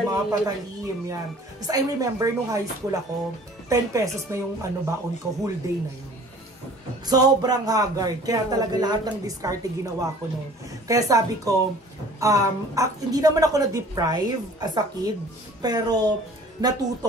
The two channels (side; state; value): both; normal; correlation 0.49